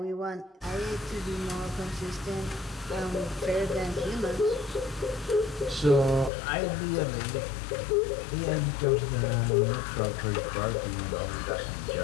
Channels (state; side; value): drops out; right; at 6.3 s